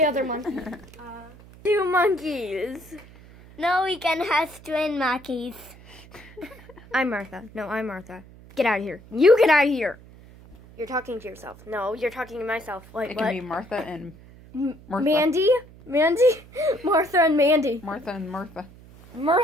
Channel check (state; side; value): noise; right; hum, 21 dB below the sound